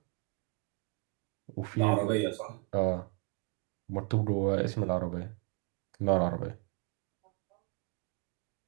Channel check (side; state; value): left; quieter; 30.0 dB